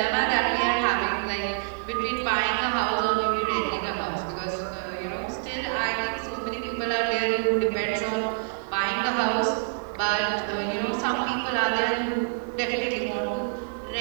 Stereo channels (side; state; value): left; silent; 60 dB below the other